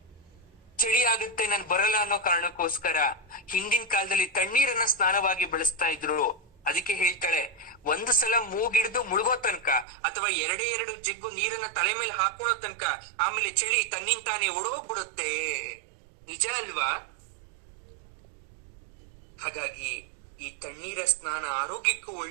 ಚಳಿ ಆಗುತ್ತೆ ನಾನ್ ಬರಲ್ಲ ಅನ್ನೋ ಕಾರಣಕ್ಕೋಸ್ಕರ ಹಿಂದಿನ ಕಾಲದಲ್ಲಿ ತಣ್ಣೀರನ್ನ ಸ್ನಾನವಾಗಿ ಬಳಸ್ತಾ ಇದ್ರು. ಅದಕ್ಕೆ ಹೇಳ್ತಾಳೆ, ಒಂದು ಸಲ ಮೂಗಿಡ್ದು ಮುಳುಗೋ ತನಕ ಅಥವಾ ಎರಡೇ ಜಗ್ಗು ನೀರನ್ನ ತಲೆ ಮೇಲೆ ಹಾಕೊಳ್ಳೋ ತನಕ ಆಮೇಲೆ ಚಳಿ ತನ್ನಿಂದ ತಾನೇ ಓಡೋಗ್ಬಿಡುತ್ತೆ. ನಿಜ ಅಲ್ವಾ? ಹಾಗಾಗಿ ಈ ತಣ್ಣೀರ ಸ್ನಾನ ಆರೋಗ್ಯಕ್ಕೂ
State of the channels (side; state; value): left; drops out; at 9.9 s